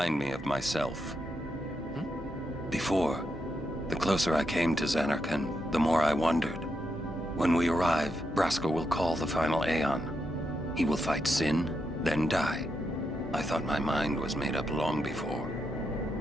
me of myself. Before, the closer I came to Zanarkand, the more I wondered. When we arrive, Braska will call the final Aeon. He will fight sin, then die. I thought my mind was made up long before.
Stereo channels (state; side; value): normal; both; correlation 0.83